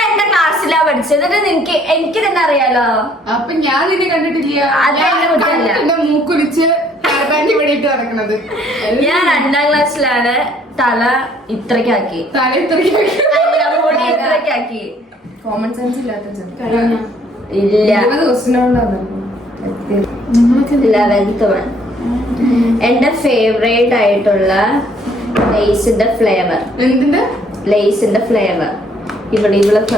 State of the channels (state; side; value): normal; both; correlation 0.63